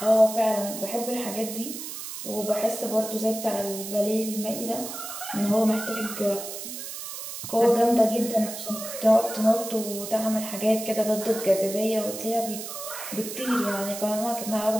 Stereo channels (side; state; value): right; noise; hiss, 8 dB below the sound